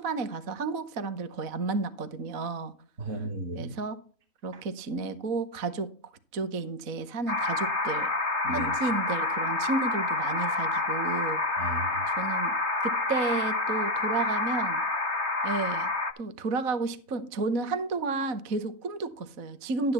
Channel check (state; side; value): late; left; 4.0 ms